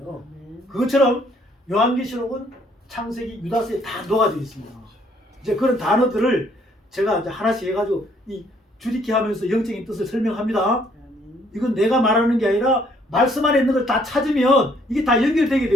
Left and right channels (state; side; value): normal; both; correlation 0.65